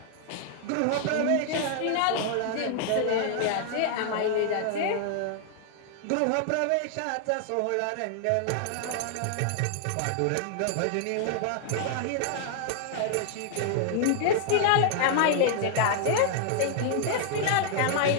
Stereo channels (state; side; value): different; both; correlation -0.01